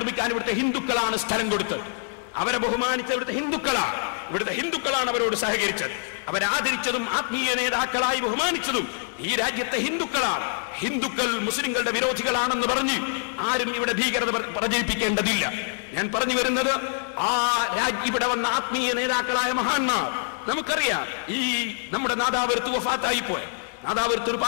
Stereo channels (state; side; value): silent; right; 62 dB below the other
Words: ഇവിടുത്തെ ഹിന്ദുക്കളാണ് സ്ഥലം കൊടുത്തത്. അവരെ ബഹുമാനിച്ച ഇവിടുത്തെ ഹിന്ദുക്കളാണ് അവരോട് സഹകരിച്ചത്. അവരാദരിച്ചതും ആത്മീയ നേതാക്കളായി ബഹുമാനിച്ചതും ഈ രാജ്യത്തെ ഹിന്ദുക്കളാണ്. ഹിന്ദുക്കൾ മുസ്ലിങ്ങളുടെ വിരോധികളാണെന്ന് പറഞ്ഞ് ആരും ഇവിടെ ഭീകരത പ്രചരിപ്പിക്കേണ്ടതില്ല. ഞാൻ പറഞ്ഞു വരുന്നത്, ഇവിടെ വന്ന ആത്മീയ നേതാക്കളായ മഹാന്മാർ, നമുക്കറിയാം, ഈ നമ്മുടെ നാദാപുരത്ത് വഫാത്തായി പോയ നാദാപുരത്ത്